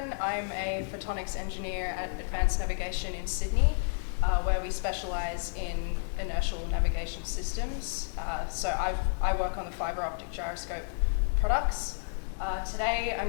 I'm a Photonics Engineer at Advanced Navigation in Sydney, where we specialise in inertial navigation systems. So I work on the fibre optic gyroscope products. Today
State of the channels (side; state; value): right; silent; digital silence